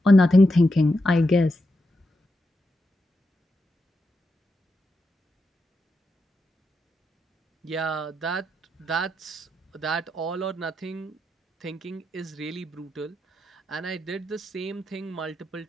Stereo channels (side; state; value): both; normal; correlation 0.86